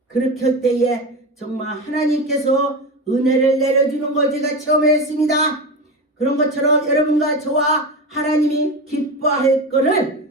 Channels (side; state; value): both; normal; correlation 0.22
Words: 그렇게 할 때에 정말 하나님께서 은혜를 내려주는 걸 제가 체험했습니다. 그런 것처럼 여러분과 저와 하나님이 기뻐할